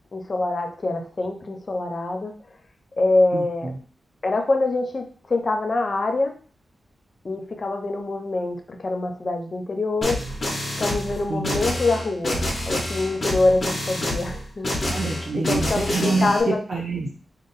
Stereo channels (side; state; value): both; normal; correlation 0.92